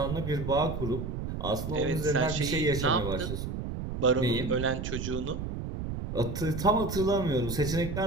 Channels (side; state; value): right; noise; rumble, 5 dB below the sound